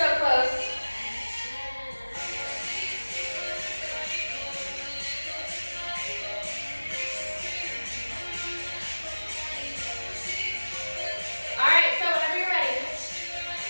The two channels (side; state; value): both; inverted; correlation -1.00